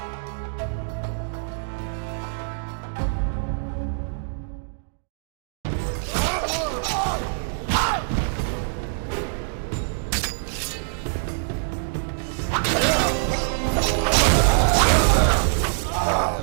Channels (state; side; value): silent; left; digital silence